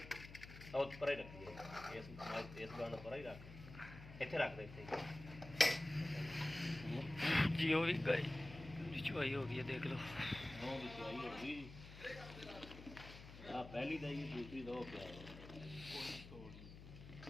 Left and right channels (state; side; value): noise; left; hum, 14 dB below the sound